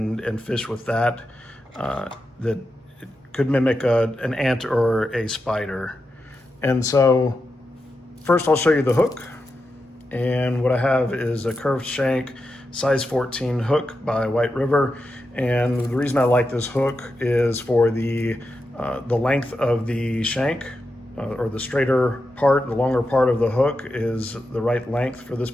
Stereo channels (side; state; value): both; normal; correlation 0.88